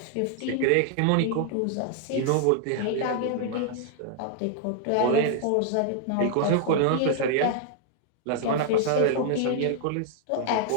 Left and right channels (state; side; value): different; both; correlation 0.00